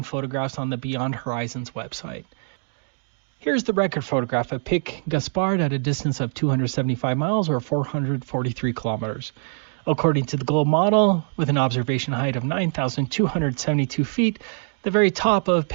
photographs on the Beyond Horizons website. Here's the record photograph of Pic Gaspard at a distance of 275 miles or 443 kilometers. According to the Globe model, with an observation height of 9,272 feet, the very top of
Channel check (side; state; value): left; silent; 63 dB below the other